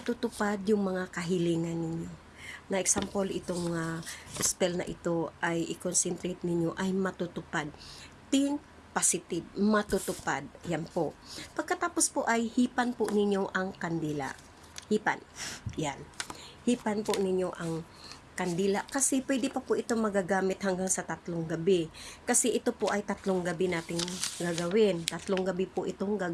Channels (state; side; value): identical; both; correlation 1.00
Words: yung mga kahilingan ninyo. Na example, itong spell na ito ay i-concentrate ninyo ay matutupad. Think positive, matutupad. Yan po. Pagkatapos po ay hipan po ninyo ang kandila. Hipan. Yan. Hipan po ninyo ang kandila. Kasi pwede pa po ito magagamit hanggang sa 3 gabi. Kasi ito po ay 3 gabi nating gagawin. 3 gabi po itong